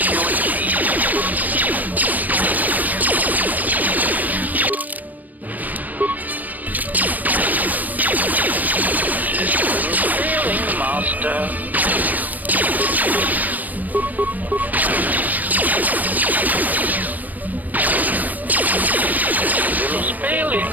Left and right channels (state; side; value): late; left; 0.082 ms